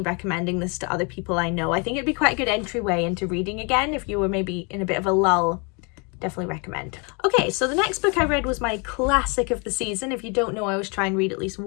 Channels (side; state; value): right; quieter; 32.8 dB